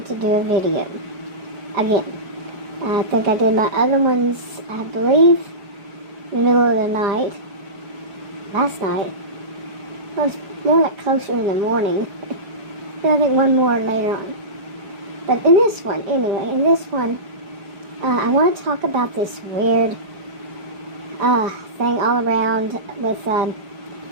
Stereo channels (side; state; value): left; late; 5.1 ms